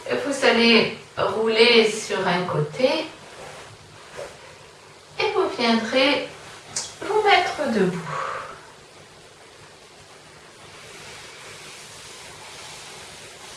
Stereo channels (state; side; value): identical; both; correlation 1.00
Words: vous allez rouler sur un côté et vous viendrez vous mettre debout.